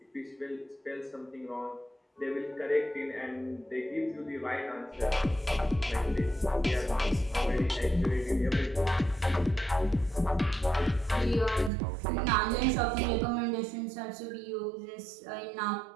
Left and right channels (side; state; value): left; drops out; at 11.7 s